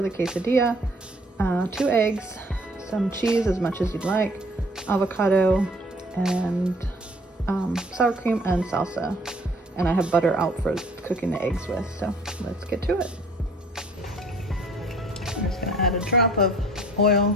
the quesadilla, 2 eggs, some cheese as much as you'd like, avocado, and sour cream and salsa. And I have butter out for cooking the eggs with, so let's get to it. I'm just going to add a drop of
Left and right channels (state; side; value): normal; both; correlation 0.56